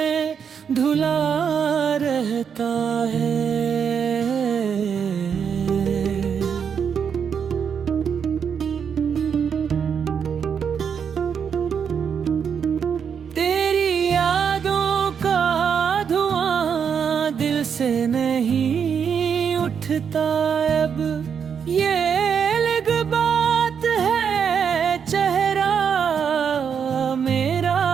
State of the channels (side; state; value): left; quieter; 7.2 dB